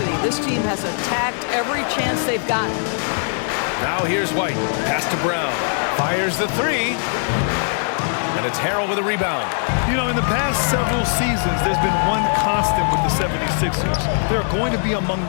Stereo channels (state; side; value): silent; right; 61 dB below the other